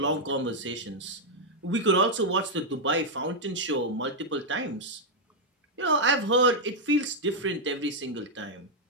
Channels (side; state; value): both; normal; correlation -0.02